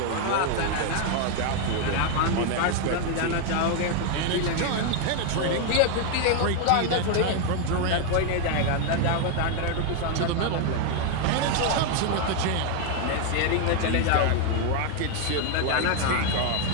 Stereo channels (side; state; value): both; different; correlation 0.01